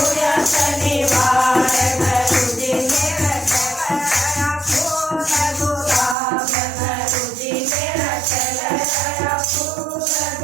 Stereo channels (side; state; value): left; drops out; at 6.2 s